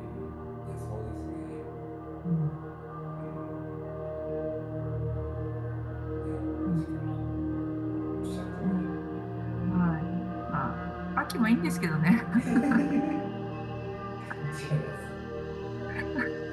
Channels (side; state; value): both; identical; correlation 1.00